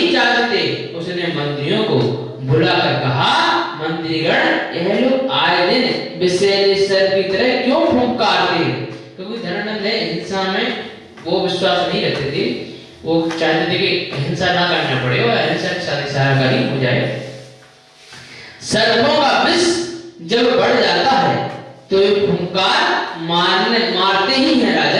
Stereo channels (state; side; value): identical; both; correlation 1.00